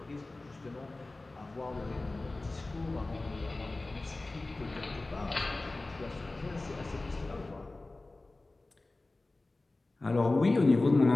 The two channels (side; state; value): right; quieter; 3.0 dB